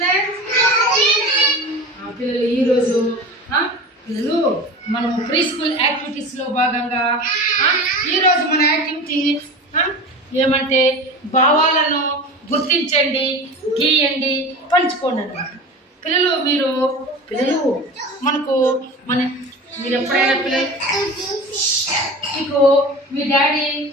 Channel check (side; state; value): both; normal; correlation 0.33